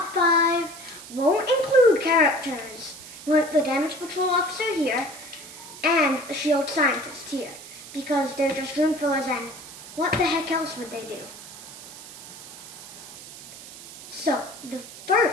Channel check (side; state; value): right; noise; hiss, 15 dB below the sound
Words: 5 won't include characters like the Damage Patrol Officer here and the Shield Scientist here, because they're just room fillers and what the heck else would they do? So, the